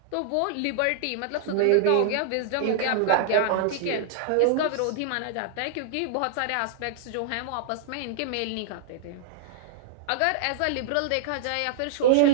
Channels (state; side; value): different; both; correlation -0.01